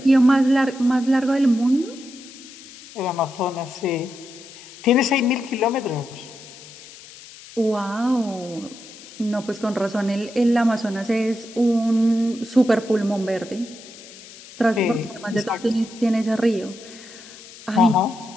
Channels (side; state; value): left; noise; hiss, 18 dB below the sound